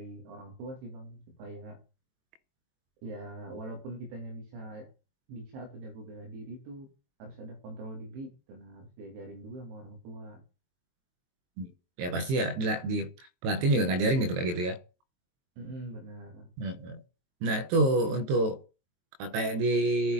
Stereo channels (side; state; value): left; late; 23 ms